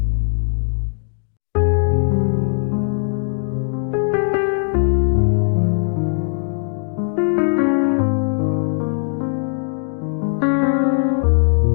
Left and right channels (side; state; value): right; silent; 66 dB below the other